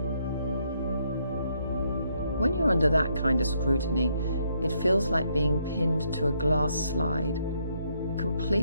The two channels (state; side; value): inverted; both; correlation -0.73